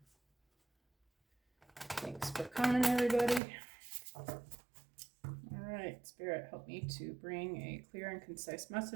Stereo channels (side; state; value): left; drops out; at 3.4 s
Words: Thanks for coming, everybody. All right, Spirit, help me to bring a clear and concise